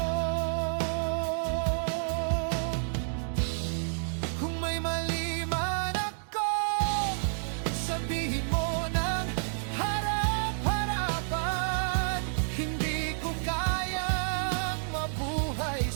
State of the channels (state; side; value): silent; left; digital silence